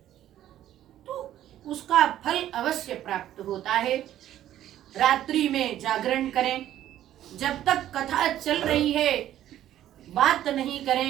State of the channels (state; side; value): quieter; left; 12.3 dB